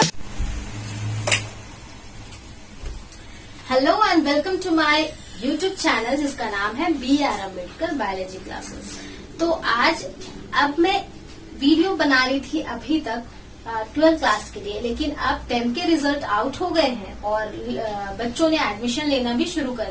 and welcome to my YouTube channel जिसका नाम है BR अम्बेडकर बायोलॉजी क्लासेस। तो आज अब मैं वीडियो बना रही थी अभी तक 12th क्लास के लिए, लेकिन अब 10th के रिजल्ट आउट हो गए हैं और बच्चों ने एडमिशन लेना भी शुरू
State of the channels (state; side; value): identical; both; correlation 1.00